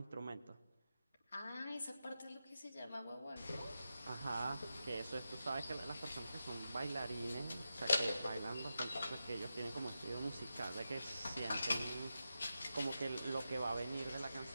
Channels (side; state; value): both; inverted; correlation -0.89